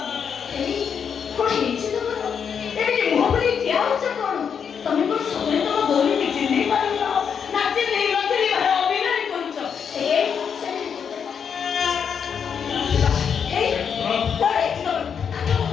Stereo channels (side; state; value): right; quieter; 7.1 dB